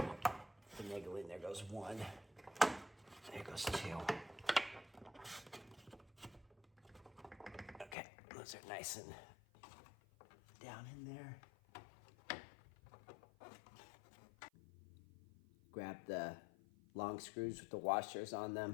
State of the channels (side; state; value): right; drops out; at 8.0 s